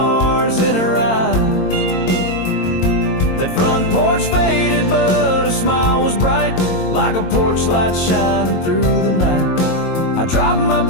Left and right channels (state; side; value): late; right; 22 ms